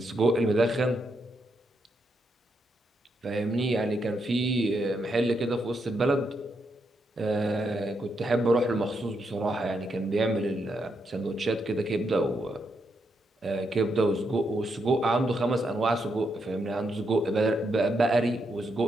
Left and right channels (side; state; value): both; normal; correlation 0.81